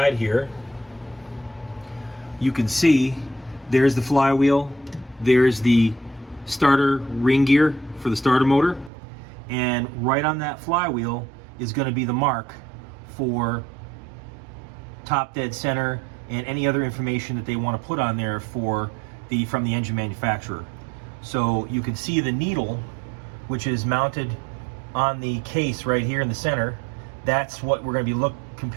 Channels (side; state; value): left; drops out; at 8.9 s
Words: here, you can see there's the flywheel. There's the starter ring gear for the starter motor, and right on that flywheel is going to be the mark for top dead center and any other information that they want to put on there from the engine manufacturer. So you can see the needle, which is mounted on the case right here in the center. That's what we're going to be